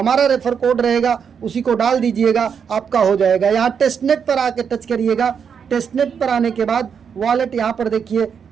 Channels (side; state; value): left; quieter; 7.0 dB